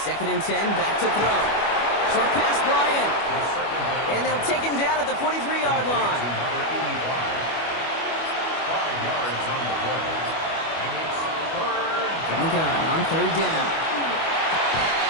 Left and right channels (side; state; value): right; late; 25 ms